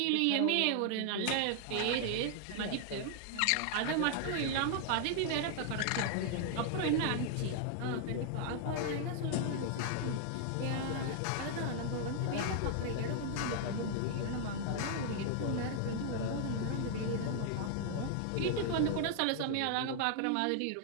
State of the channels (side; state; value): both; different; correlation 0.00